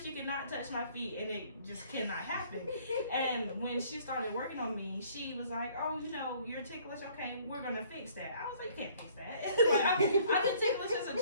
You cannot touch my feet, and it just cannot happen. And when she started working on me, she was like, oh, you're ticklish. Okay, we're going to fix that. I was like, you can't fix that. Like, I've been ticklish as a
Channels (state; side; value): inverted; both; correlation -0.59